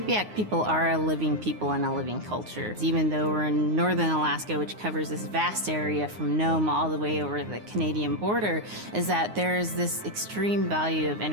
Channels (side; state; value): left; late; 9.6 ms